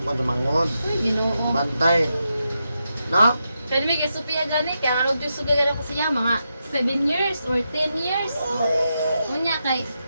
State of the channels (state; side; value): inverted; both; correlation -0.86